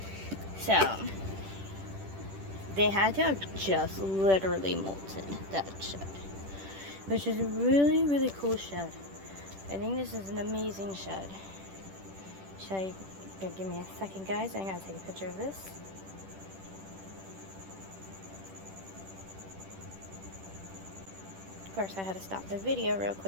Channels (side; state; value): left; late; 10 ms